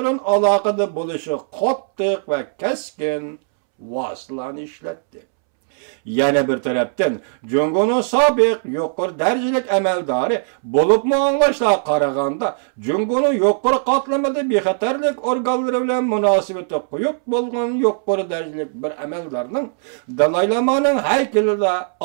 alakada buluşu qattiq ve keskin vasılan işletti. Yana bir taraftan Jungo'nun sabık yuqur derecelik emeldarı bulup mu anlaşla qaraganda Jungo'nun yuqur qatlamada bexatarlik organları bilen münasibeti quyuq bolgan yuqur derecelik bir emeldarının Dalai Lama'nın heykelinde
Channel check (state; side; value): silent; left; 66 dB below the other